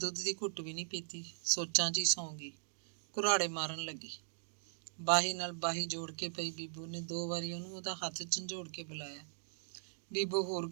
ਦੀ ਘੁੱਟ ਵੀ ਨਹੀਂ ਪੀਤੀ, ਸੋਚਾਂ 'ਚ ਹੀ ਸੌਂ ਗਈ। ਕੁਰਾੜੇ ਮਾਰਨ ਲੱਗੀ। ਬਾਹੀ ਨਾਲ ਬਾਹੀ ਜੋੜ ਕੇ ਪਈ ਬੀਬੋ ਨੇ 2 ਵਾਰੀ ਉਹਨੂੰ ਉਹਦਾ ਹੱਥ ਝੰਜੋੜ ਕੇ ਬੁਲਾਇਆ। ਬੀਬੋ ਹੋਰ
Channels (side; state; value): left; silent; digital silence